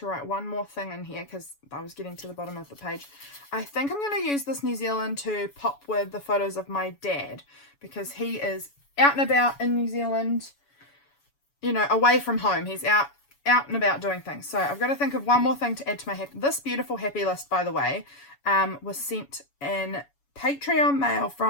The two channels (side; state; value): right; late; 7.1 ms